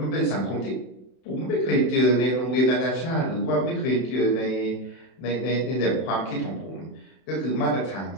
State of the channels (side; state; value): right; late; 31 ms